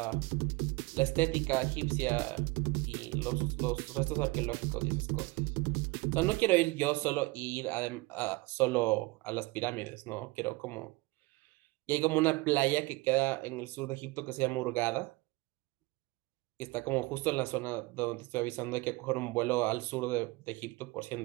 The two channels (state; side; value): quieter; left; 23.0 dB